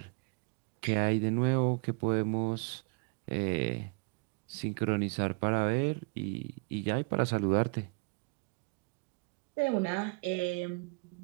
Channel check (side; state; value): left; quieter; 33.7 dB